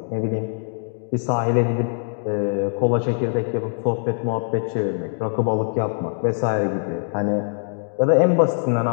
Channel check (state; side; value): silent; right; digital silence